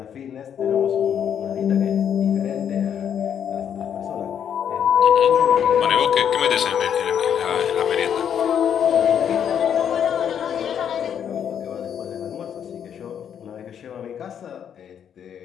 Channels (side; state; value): right; quieter; 8.7 dB